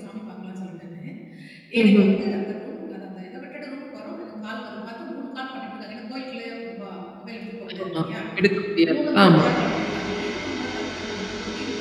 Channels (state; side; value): identical; both; correlation 1.00